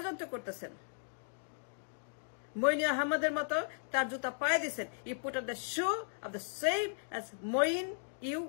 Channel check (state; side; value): silent; right; digital silence